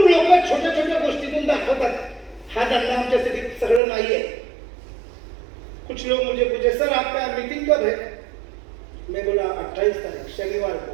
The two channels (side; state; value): left; drops out; at 3.8 s